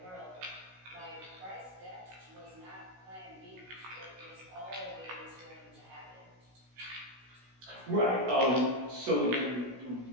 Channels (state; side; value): late; left; 16 ms